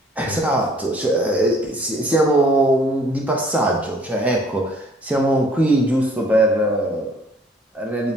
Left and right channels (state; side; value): normal; both; correlation 0.57